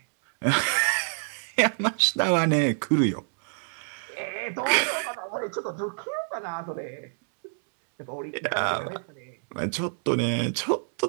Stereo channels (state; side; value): silent; left; digital silence